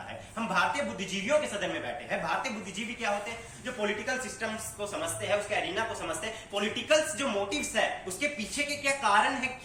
है। हम भारतीय बुद्धिजीवियों के सदन में बैठे हैं। भारतीय बुद्धिजीवी क्या होते हैं? जो पॉलिटिकल सिस्टम्स को समझते हैं, उसके एरिना को समझते हैं, पॉलिटिकल जो मोटिव्स है उसके पीछे के क्या कारण है,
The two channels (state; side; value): identical; both; correlation 1.00